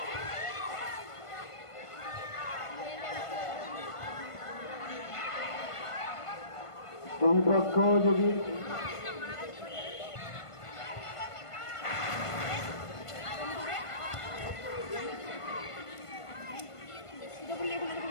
দুই পক্ষ যদি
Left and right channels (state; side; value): late; right; 1.5 ms